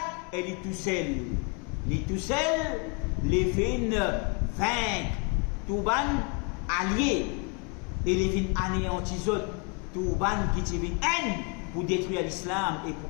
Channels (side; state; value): right; quieter; 34.4 dB